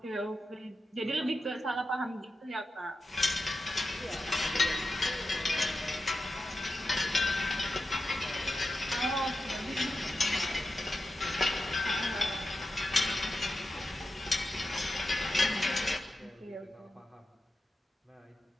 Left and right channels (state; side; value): normal; both; correlation 0.91